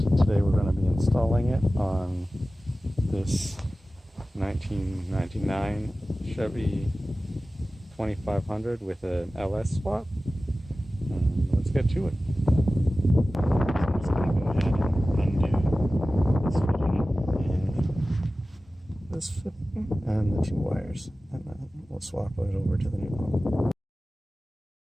today we're going to be installing it on this 1999 Chevy 2500 with an LS swap. Let's get to it. I'm just going to go ahead and undo this fitting and the two wires, and then we'll swap it over to the new pump.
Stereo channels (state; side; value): normal; both; correlation 0.96